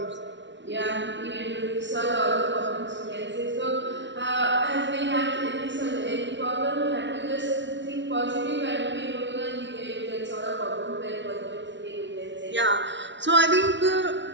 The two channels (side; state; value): left; late; 0.53 ms